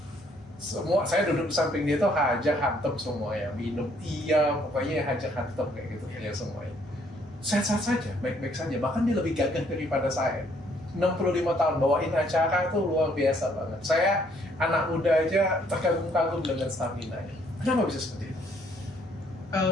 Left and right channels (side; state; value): both; normal; correlation 0.66